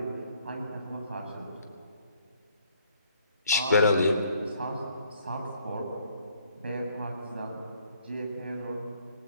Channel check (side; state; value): both; inverted; correlation -0.64